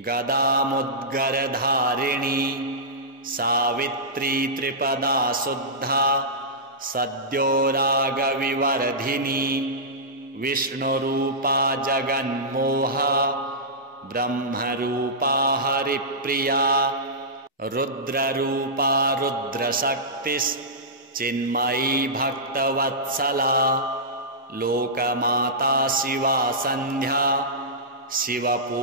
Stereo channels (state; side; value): normal; both; correlation -0.15